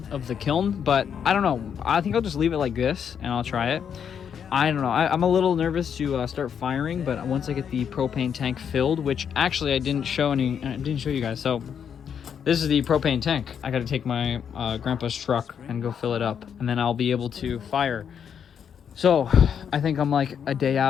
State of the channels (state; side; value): quieter; right; 7.8 dB